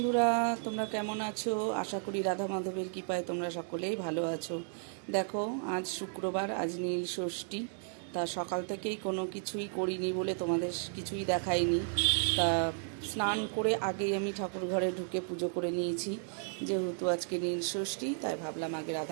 তোমরা কেমন আছো? আশা করি রাধা মাধবের কৃপায় তোমরা সকলেই ভালো আছো। দেখো, আজ শুক্রবার, আজ নীল ষষ্ঠী। তা সকাল থেকেই কোনো কিছুই করিনি বলে তোমাদের কিছুই দেখাইনি। তা স্নান করে আগেই আমি ঠাকুর ঘরে ঢুকে পুজো করে নিয়েছি। যেহেতু আজকে নীল ষষ্ঠী, তাই ভাবলাম আগে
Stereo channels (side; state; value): left; silent; 55 dB below the other